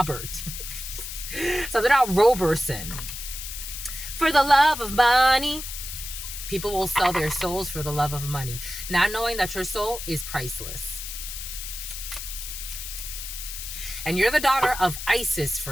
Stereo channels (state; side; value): noise; left; hiss, 8 dB below the sound